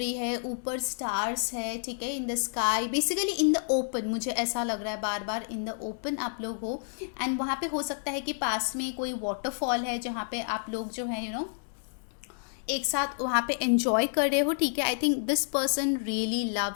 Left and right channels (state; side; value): silent; right; 58 dB below the other